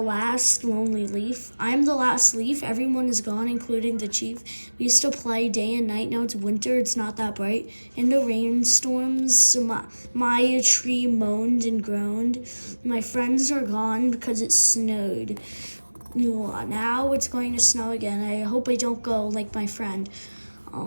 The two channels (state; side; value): inverted; both; correlation -1.00